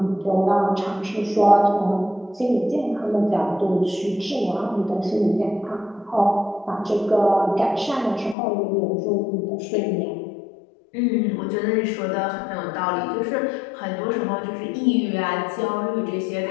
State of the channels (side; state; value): right; drops out; at 8.3 s